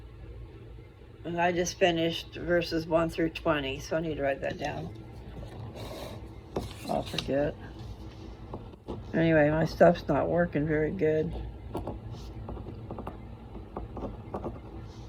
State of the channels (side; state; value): both; identical; correlation 1.00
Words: And I just finished verses 1 through 20, so I need to write that down. I'll forget. Anyway, my stuff's not working very good.